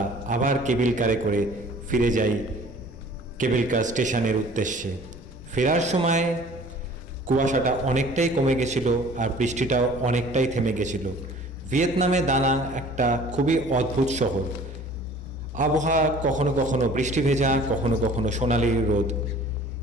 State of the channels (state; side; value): normal; both; correlation 0.49